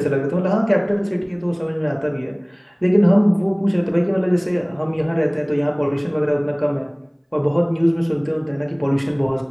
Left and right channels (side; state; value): both; identical; correlation 1.00